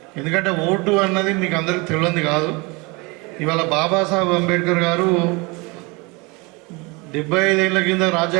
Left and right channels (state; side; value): quieter; left; 26.9 dB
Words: ఎందుకంటే ఓటు అన్నది మీకు అందరికీ తెలియదు కాదు. ఇవాళ బాబాసాహెబ్ అంబేద్కర్ గారు 75 ఏళ్ళ కింద